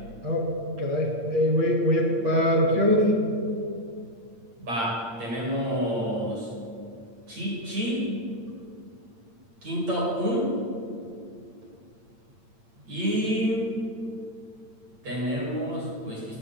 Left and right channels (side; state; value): left; late; 8.8 ms